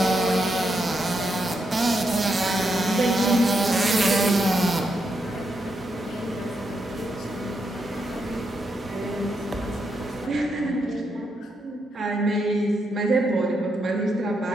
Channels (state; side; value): normal; both; correlation 0.81